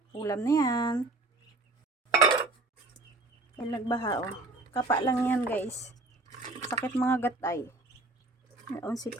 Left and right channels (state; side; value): quieter; left; 3.0 dB